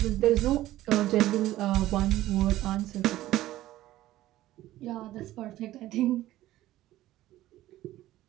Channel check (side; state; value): left; quieter; 15.2 dB